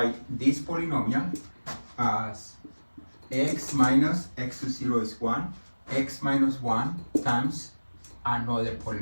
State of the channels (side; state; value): both; inverted; correlation -1.00